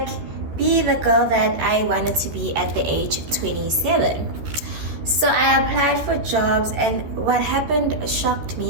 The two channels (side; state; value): left; late; 13 ms